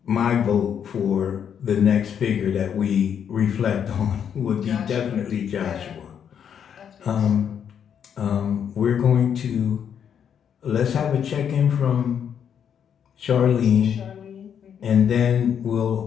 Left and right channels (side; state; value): right; quieter; 8.2 dB